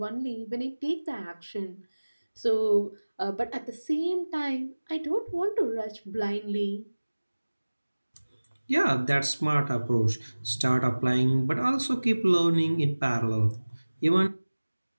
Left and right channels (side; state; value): both; inverted; correlation -1.00